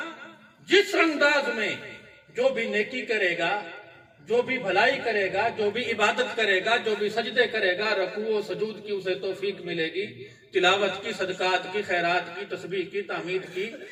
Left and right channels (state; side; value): identical; both; correlation 1.00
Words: جس انداز میں جو بھی نیکی کرے گا، جو بھی بھلائی کرے گا، جو بھی عبادت کرے گا، جو بھی سجدے کرے گا، رکوع و سجود کی اسے توفیق ملے گی، تلاوت کی، صدقات کی، خیرات کی، تسبیح کی، تحمید کی،